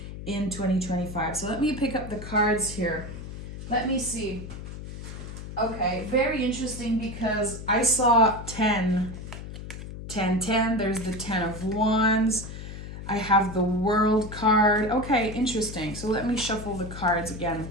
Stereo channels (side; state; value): left; noise; hum, 10 dB below the sound